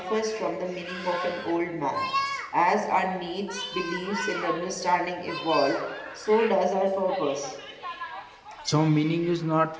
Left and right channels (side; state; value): both; identical; correlation 1.00